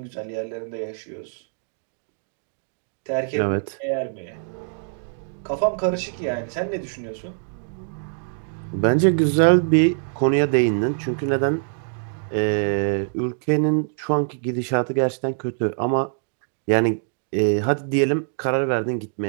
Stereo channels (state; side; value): silent; left; digital silence